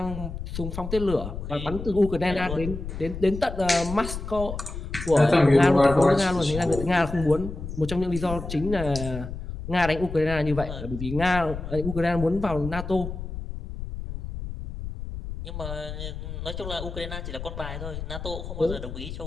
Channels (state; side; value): noise; left; rumble, 8 dB below the sound